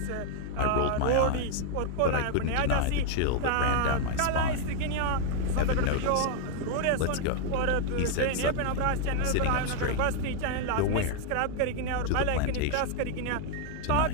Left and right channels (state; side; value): different; both; correlation 0.00